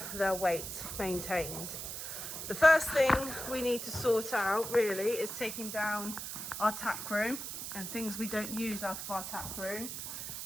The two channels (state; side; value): noise; right; hiss, 6 dB below the sound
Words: their weight maintained. The first thing we need to sort out really is taking down our tack room and things we don't use out of our tack room.